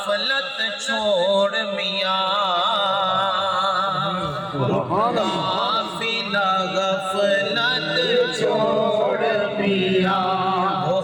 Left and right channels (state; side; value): identical; both; correlation 1.00